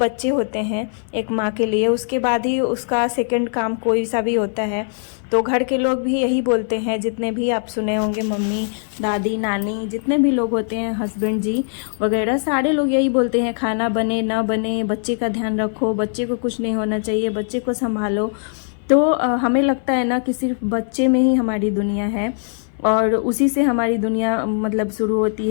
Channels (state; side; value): silent; right; 65 dB below the other